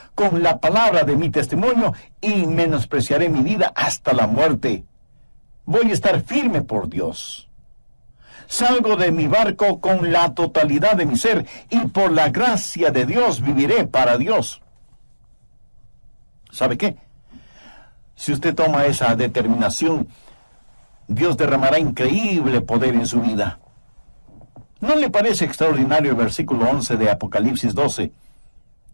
con la palabra de mi testimonio, y menospreciaré mi vida hasta la muerte. Voy a estar firme por Dios. Salgo de mi barco con la totalidad de mi ser, y por la gracia de Dios viviré para Dios. ¿Sabe qué? Si usted toma esa determinación, Dios derramará increíble poder en su vida. ¿No le parece extraordinario el versículo 11 de Apocalipsis 12?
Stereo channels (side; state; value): both; inverted; correlation -1.00